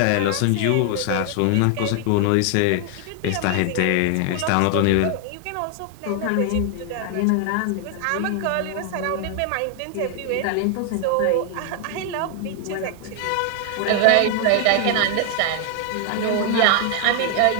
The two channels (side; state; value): both; different; correlation 0.00